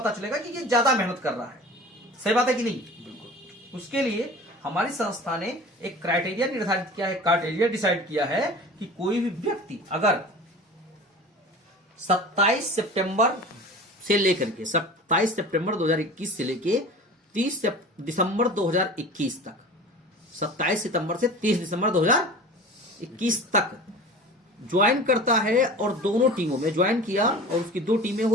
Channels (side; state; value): both; normal; correlation 0.38